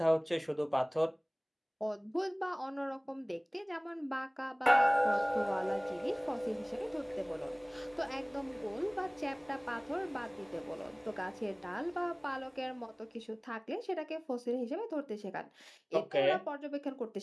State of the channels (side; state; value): both; identical; correlation 1.00